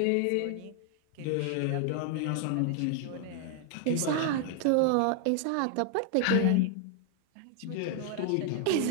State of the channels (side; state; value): both; different; correlation 0.00